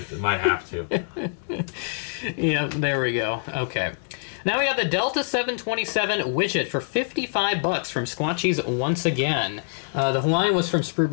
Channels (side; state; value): right; silent; digital silence